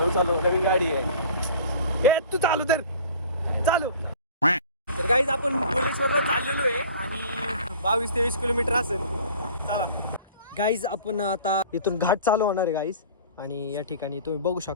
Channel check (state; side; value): inverted; both; correlation -0.44